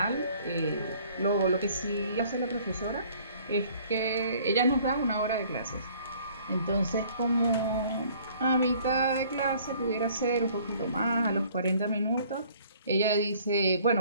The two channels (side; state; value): both; inverted; correlation -0.56